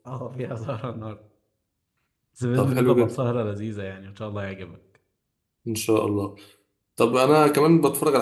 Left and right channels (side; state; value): both; identical; correlation 1.00